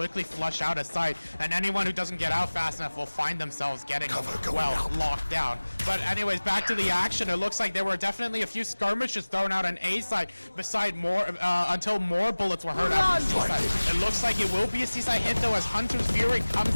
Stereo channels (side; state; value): both; inverted; correlation -1.00